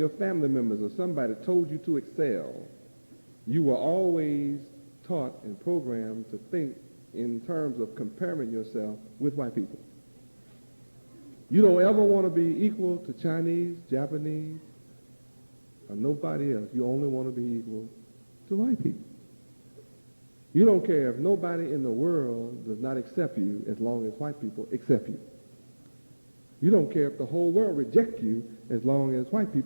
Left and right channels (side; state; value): both; inverted; correlation -1.00